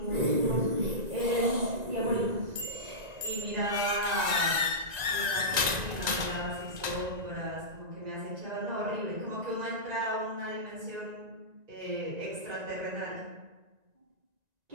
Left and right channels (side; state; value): left; late; 1.9 ms